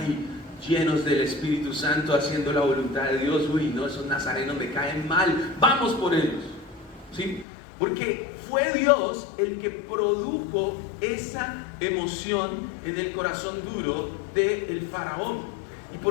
llenos del Espíritu Santo, haciendo la voluntad de Dios. Uy, no, esos nazarenos me caen mal, vamos por ellos, ¿sí? Porque fue Dios el que produjo esa emoción en el corazón duro del faraón. ¿Y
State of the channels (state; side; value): drops out; right; at 7.5 s